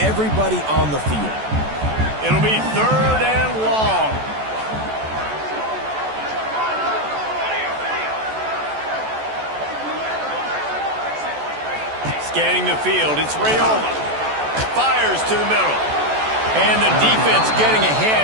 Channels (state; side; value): late; left; 14 ms